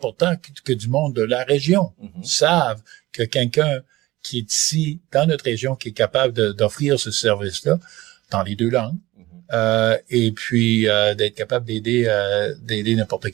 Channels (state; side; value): quieter; left; 18.4 dB